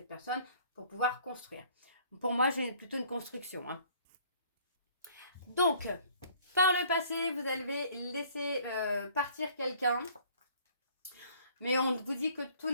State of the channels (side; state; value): both; inverted; correlation -0.56